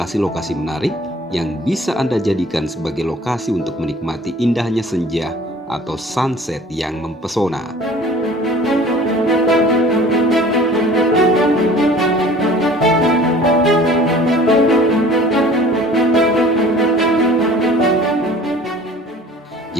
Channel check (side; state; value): both; normal; correlation 0.47